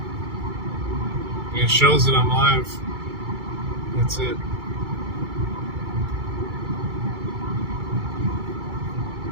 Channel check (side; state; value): left; late; 2.3 ms